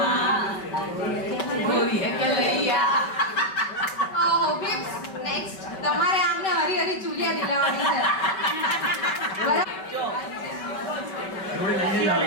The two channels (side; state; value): right; late; 5.2 ms